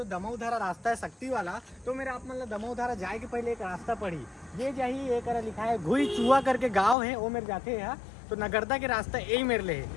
दमोधारा रास्ता है शक्ति वाला। तो मेरे आप मतलब दमोधारा जाए के पहले एक रास्ता पड़ी, ये जाही एक लिखा है घुई चुआ करके गाँव है, वो मेरे जाते हैं। तो नगरदा के रास्ता यही मेरे लिए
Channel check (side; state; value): right; drops out; at 7.0 s